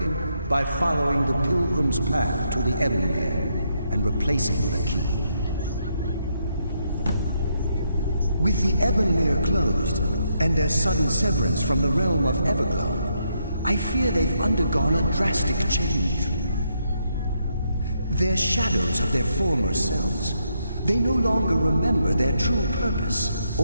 by following the Pilgrim's path to the Ebonmere and replacing the key. With the Ebonmere closed, and their sudden severance from the realm of Everglow, I fear they've undergone a drastic change. They're shadows of their former selves. They no longer remember their true purpose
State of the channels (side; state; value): both; inverted; correlation -0.78